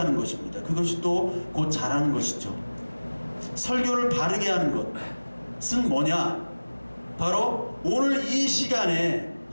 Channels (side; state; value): both; inverted; correlation -1.00